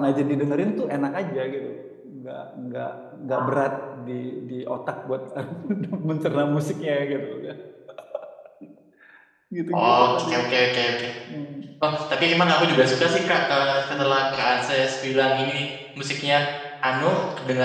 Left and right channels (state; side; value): identical; both; correlation 1.00